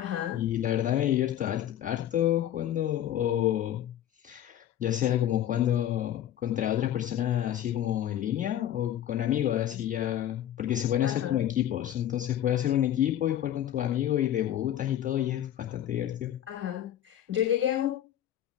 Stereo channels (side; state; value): right; quieter; 11.4 dB